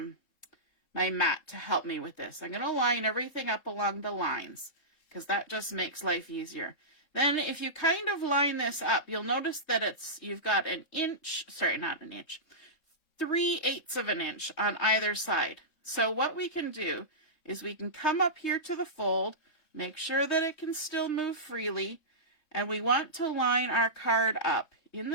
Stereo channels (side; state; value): right; late; 3.7 ms